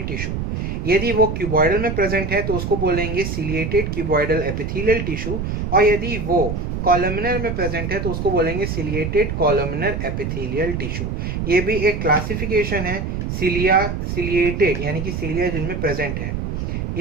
टिश्यू। यदि वो क्यूबॉइडल में प्रेजेंट है तो उसको बोलेंगे सिलिएटेड क्यूबॉइडल एपिथेलियल टिश्यू, और यदि वो कॉलमनर में प्रेजेंट है तो उसको बोलेंगे सिलिएटेड कॉलमनर एपिथेलियल टिश्यू। ये भी एक क्लासिफिकेशन है सिलिया सिलिएटेड यानी कि सिलिया जिनमें प्रेजेंट है।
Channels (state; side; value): noise; right; rumble, 3 dB below the sound